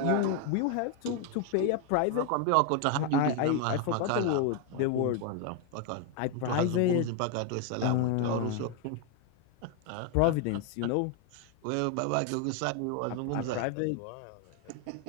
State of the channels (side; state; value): both; different; correlation 0.01